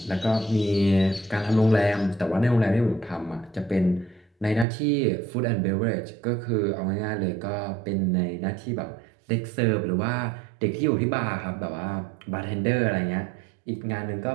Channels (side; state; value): left; drops out; at 4.7 s